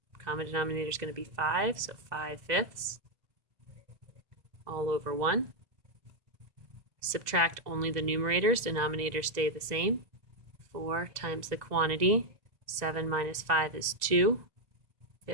common denominator is going to be 5, so 5/5 all over 1. Subtract only the numerators, denominators stay the same. 4 times the quantity, 7 minus 5 is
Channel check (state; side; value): late; left; 2.0 ms